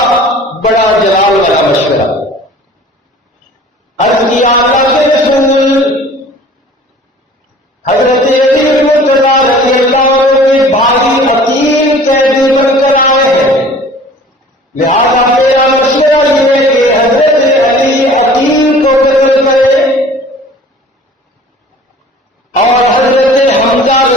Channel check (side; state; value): both; normal; correlation 0.47